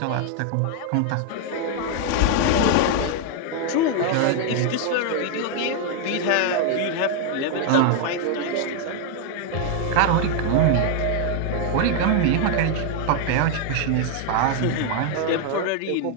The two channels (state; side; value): different; both; correlation 0.00